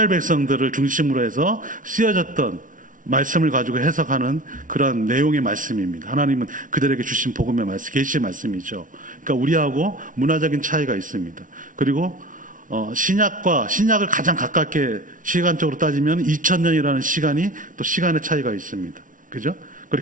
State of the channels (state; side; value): late; left; 0.38 ms